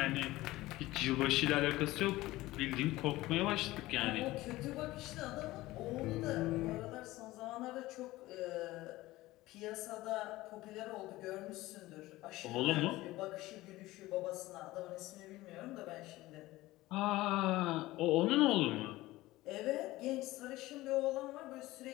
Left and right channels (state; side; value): quieter; right; 18.1 dB